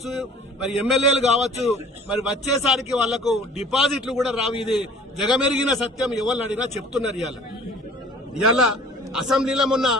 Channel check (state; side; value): normal; both; correlation 0.48